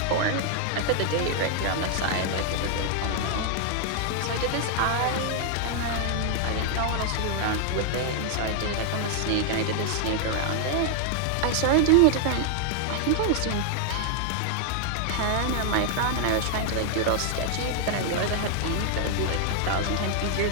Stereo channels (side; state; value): both; different; correlation 0.00